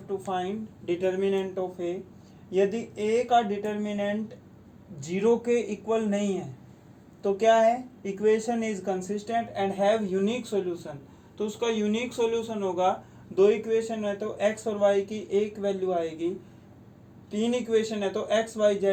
to find determinant of A. यदि ए का डिटर्मिनेंट 0 के इक्वल नहीं है तो क्या है, equation is consistent and have unique solution. तो उसका यूनिक सॉल्यूशन होगा, 2 इक्वेशन है तो एक्स और वाई की एक वैल्यू आएगी, 3 इक्वेशन है तो एक्स वाई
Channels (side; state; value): both; identical; correlation 1.00